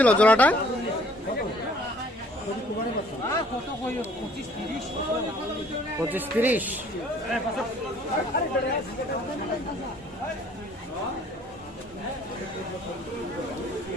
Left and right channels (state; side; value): normal; both; correlation 0.57